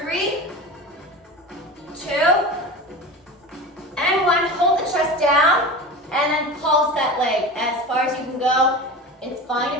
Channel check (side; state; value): both; normal; correlation 0.31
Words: 2, and 1. Hold the chest down and then pulse that leg as far as you can go. It's fine